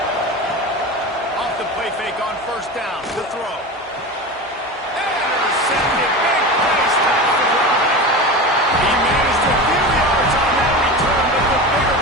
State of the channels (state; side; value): normal; both; correlation 0.27